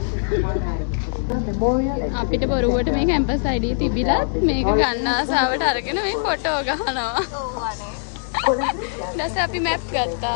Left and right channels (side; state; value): right; silent; digital silence